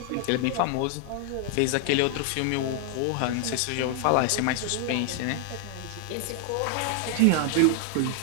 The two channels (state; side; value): different; both; correlation 0.00